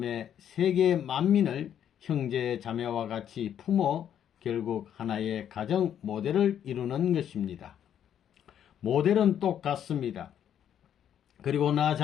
세계 만민을 형제 자매와 같이 품어 결국 하나의 가정 모델을 이루는 것입니다. 모델은 똑같습니다. 그리고 나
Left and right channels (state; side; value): quieter; right; 9.6 dB